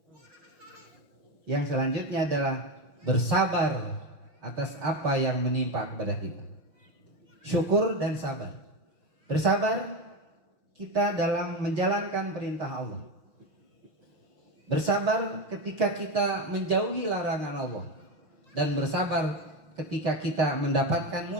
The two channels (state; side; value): late; left; 6.4 ms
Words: yang selanjutnya adalah bersabar atas apa yang menimpa kepada kita. Syukur dan sabar. Bersabar kita dalam menjalankan perintah Allah. Bersabar ketika kita menjauhi larangan Allah. Dan bersabar ketika kita mendapatkan